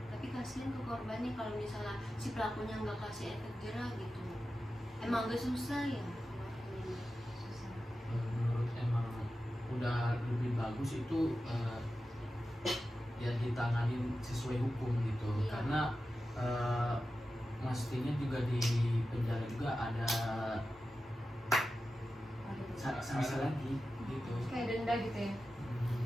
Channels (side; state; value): both; normal; correlation 0.92